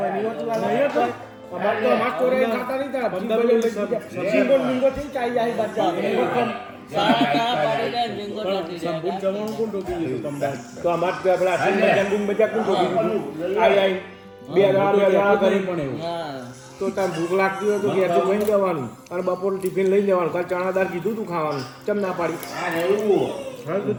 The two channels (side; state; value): both; identical; correlation 1.00